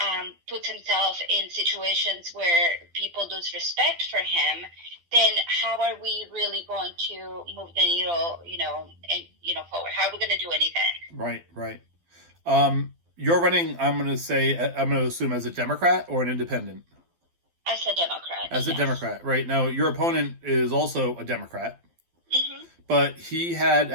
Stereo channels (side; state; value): left; late; 12 ms